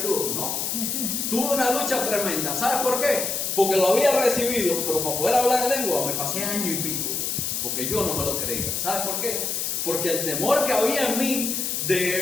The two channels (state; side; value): noise; left; hiss, 1 dB below the sound